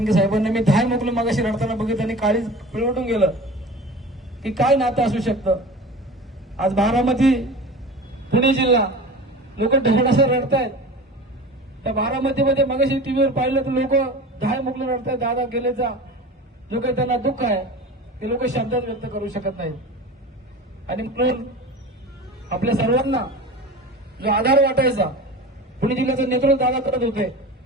साहेबांना मी 10 मोकळं मागाशी रडताना बघितलं आणि काळीच पिळवटून गेलं की काय नातं असू शकतं. आज बारामती, पुणे जिल्हा, लोक ढगडासं रडतायत. त्या बारामतीमध्ये मगाशी टीव्हीवर पाहिलं तर लोक 10 मुकलं रडतायत. दादा गेलेचा जो काही त्यांना दुःख आहे ते लोक शब्दात व्यक्त करू शकत नाहीत. आणि म्हणून आपल्या सर्वांना जो आधार वाटायचा, पुणे जिल्ह्याचं नेतृत्व दादा करत होते.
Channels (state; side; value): normal; both; correlation 0.35